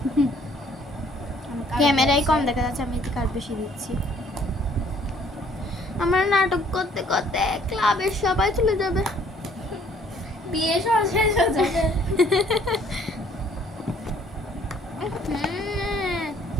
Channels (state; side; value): normal; both; correlation 0.60